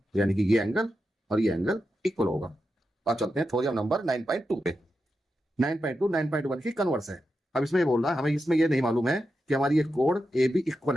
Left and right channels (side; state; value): both; normal; correlation 0.88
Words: यानी कि ये एंगल और ये एंगल इक्वल होगा। अब चलते हैं थ्योरम नंबर 9.2 पे। 9.2 9.1 की कन्वर्स है। अब इसमें ये बोल रहा है हमें इसमें ये नहीं मालूम है कि हमारी ये कोड ए बी इक्वल